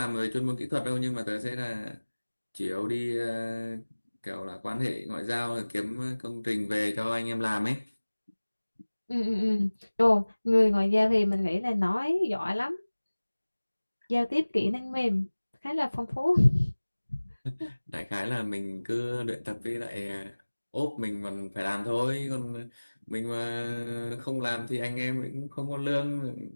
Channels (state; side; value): inverted; both; correlation -1.00